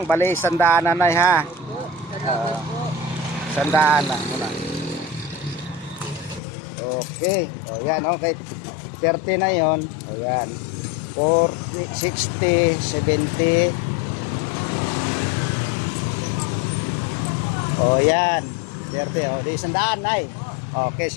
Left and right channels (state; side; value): drops out; right; at 6.4 s